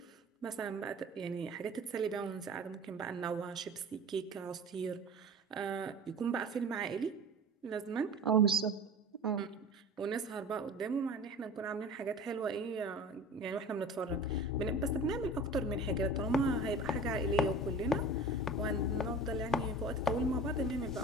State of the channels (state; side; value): normal; both; correlation 0.37